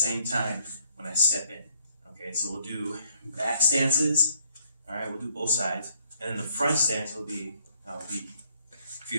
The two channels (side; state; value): both; inverted; correlation -0.68